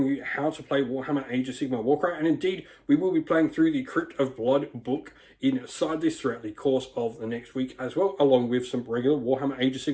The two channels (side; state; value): both; identical; correlation 1.00